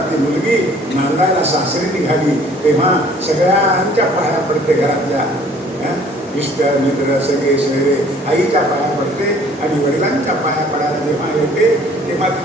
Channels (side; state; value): both; normal; correlation 0.55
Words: ती मुलगी नांदायला सासरी निघाली. तेव्हा सगळ्यांच्या पाया पडते, घरातल्या मिस्टर मित्र सगळे सगळे आईच्या पाया पडते, आणि वडिलांच्या पाया पडायला जेव्हा येते तेव्हा